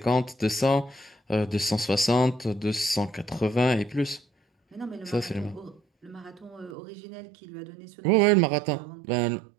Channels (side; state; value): left; drops out; at 6.8 s